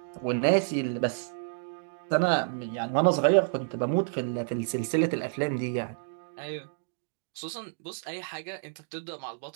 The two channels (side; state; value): left; silent; digital silence